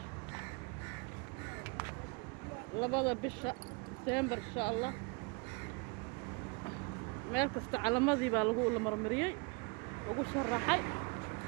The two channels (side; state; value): left; quieter; 31.2 dB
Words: labada bisha December insha Allah meel kasta calamadii baa lagu marmariyay ugu sharaxay